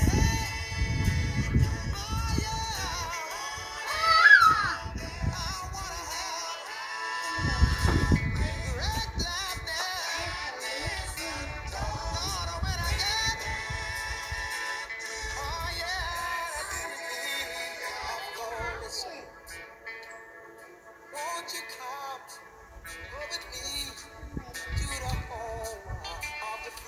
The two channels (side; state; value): both; identical; correlation 1.00